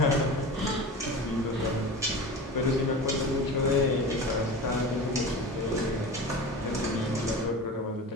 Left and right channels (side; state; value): both; normal; correlation 0.32